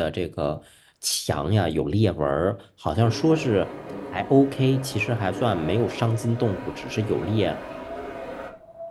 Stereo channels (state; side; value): identical; both; correlation 1.00